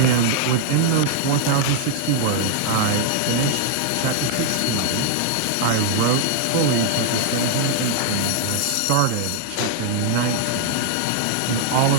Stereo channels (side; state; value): both; different; correlation 0.00